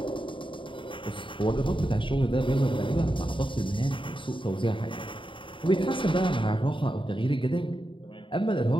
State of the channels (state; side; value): late; right; 0.24 ms